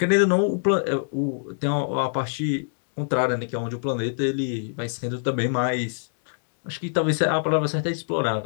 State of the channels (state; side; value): silent; right; digital silence